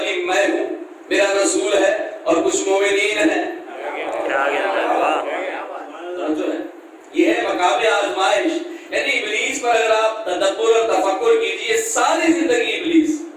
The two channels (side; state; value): both; identical; correlation 1.00